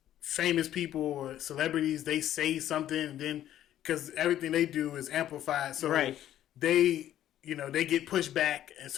famous people or celebrities they say something and then because everything they do is amplified, so Right. they they get pushed back, and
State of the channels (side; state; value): right; quieter; 12.0 dB